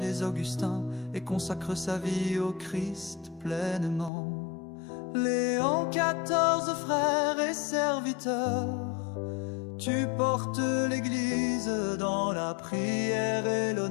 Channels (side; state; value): right; drops out; at 4.1 s